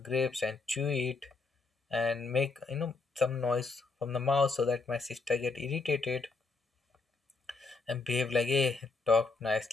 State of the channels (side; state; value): right; quieter; 4.0 dB